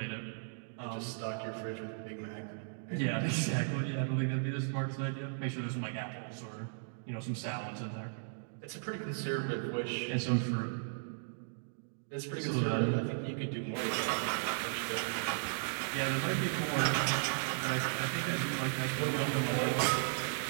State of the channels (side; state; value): left; silent; digital silence